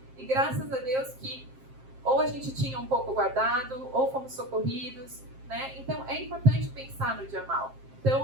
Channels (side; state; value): left; late; 7.6 ms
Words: e graças a Deus que ou a gente tinha um pouco guardado, ou fomos socorridos, né? Então, é importante pensar no dia mal.